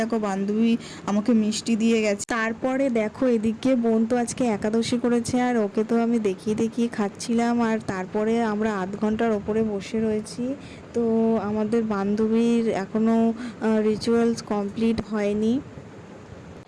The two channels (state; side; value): identical; both; correlation 1.00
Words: দেখো বান্ধবী আমাকে মিষ্টি দিয়ে গেছে। তারপরে দেখো এদিকে বোন তো আজকে একাদশী করেছে আর ওকে তো আমি দেখিয়ে দেখিয়ে খাচ্ছিলাম। আর তারপরে আমরা আধ ঘন্টার ওপরে বসে রয়েছি। তো আমাদের বান্ধবীর এখনও রিচুয়ালস কমপ্লিট হয়নি।